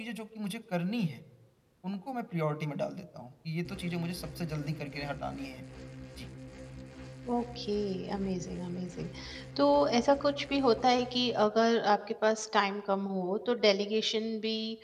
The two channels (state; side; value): identical; both; correlation 1.00